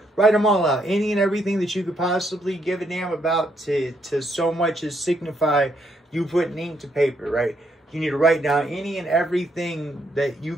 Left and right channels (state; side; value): normal; both; correlation 0.74